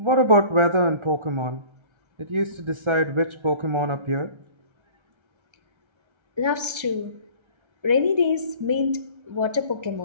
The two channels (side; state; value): left; late; 1.3 ms